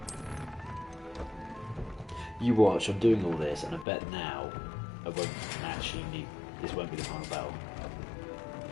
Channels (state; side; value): drops out; right; at 3.9 s